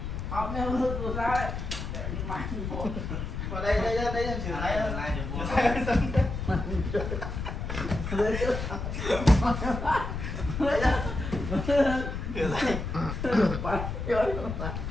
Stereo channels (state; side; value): noise; left; rumble, 5 dB below the sound